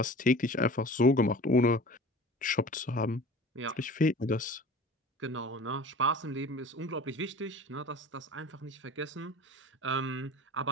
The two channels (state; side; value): normal; both; correlation 0.40